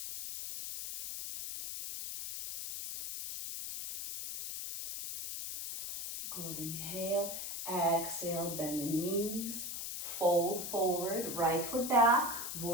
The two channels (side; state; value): left; noise; hiss, 6 dB below the sound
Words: Good, inhale, exhale, bend the knees, fold forward, right foot back,